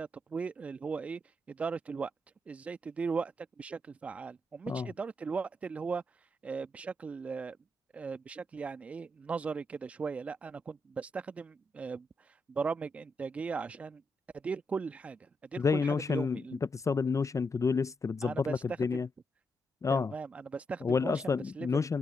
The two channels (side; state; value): both; normal; correlation 0.82